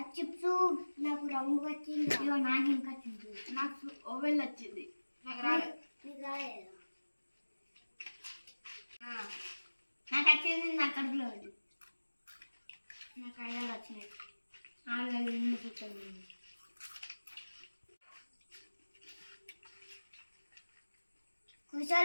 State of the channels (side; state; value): both; inverted; correlation -1.00